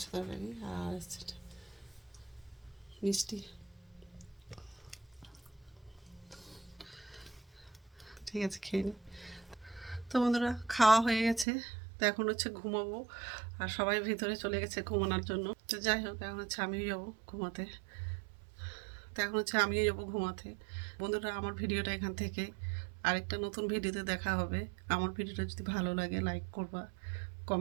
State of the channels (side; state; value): left; drops out; at 11.5 s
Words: তরকারি, আর হচ্ছে মিষ্টি। ঠিক আছে, খেয়ে নিই। তো বন্ধুরা, খাওয়া হয়ে গেছে, তো এখন হচ্ছে ঘুমাবো, আর সবাই ভিতরে চলে গেছে ঘুমানোর জন্য। তো যাই হোক, এখন হচ্ছে আমিও যাবো ঘুমাতে। তো এখন হচ্ছে আমিও যাবো ঘুমাতে। বন্ধুরা, আমার ভিডিওটা এখান থেকে আরেকটা নতুন ভিডিওতে দেখা হবে। আমার ভিডিওটা যদি ভালো লাগে লাইক করবা,